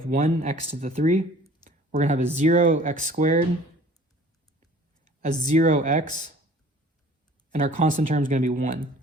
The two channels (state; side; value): normal; both; correlation 0.50